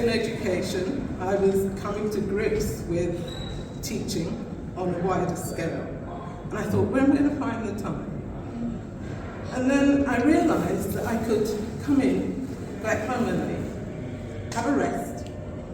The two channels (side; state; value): both; identical; correlation 1.00